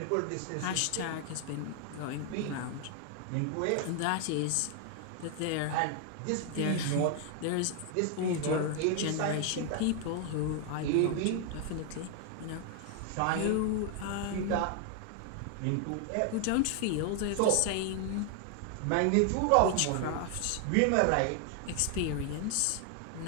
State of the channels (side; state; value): both; different; correlation 0.00